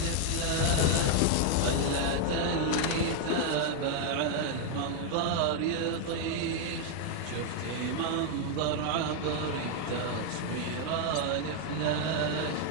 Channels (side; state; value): both; different; correlation 0.00